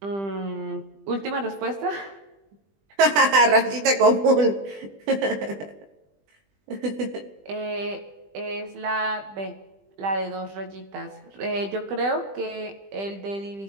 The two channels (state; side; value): late; left; 20 ms